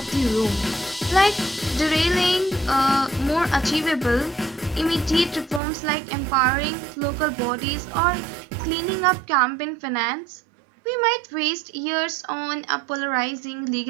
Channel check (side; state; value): left; drops out; at 5.6 s